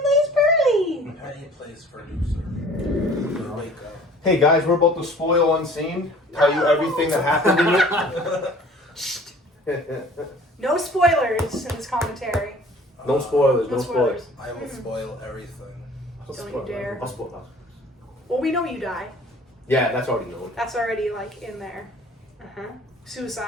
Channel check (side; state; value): both; normal; correlation 0.49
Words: plays Pearly! Penny plays producer. Wake up. Hey guys, we're about to spoil UnSeen. Tell you everything that happened in it. No spoilers in this commentary. No spoilers, No no spoilers. spoilers. I will spoil everything. Don't you dare. I'll spoil that. Well, we know you die. Yeah, that's already known. That's already, like, in there.